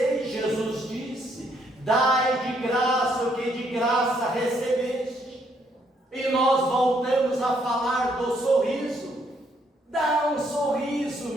Jesus disse: dai de graça o que de graça recebeste. E nós voltamos a falar do sorriso. Dá um sorriso,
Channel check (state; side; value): normal; both; correlation 0.71